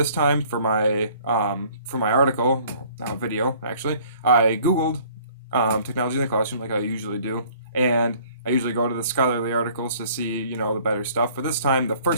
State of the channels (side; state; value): both; inverted; correlation -0.55